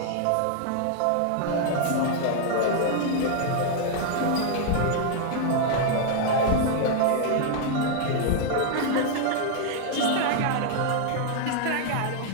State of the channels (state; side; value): different; both; correlation -0.01